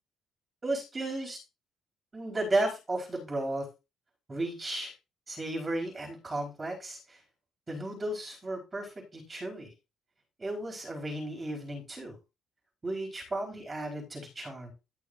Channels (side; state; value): both; normal; correlation 0.89